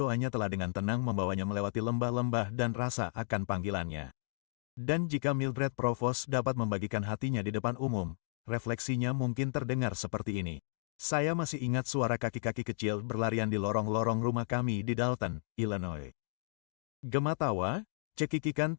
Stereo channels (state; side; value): silent; right; digital silence